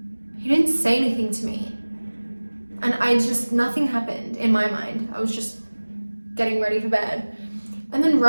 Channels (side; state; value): both; inverted; correlation -1.00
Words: he didn't say anything to me, and nothing happened in my mind. I was just getting ready for bed, and then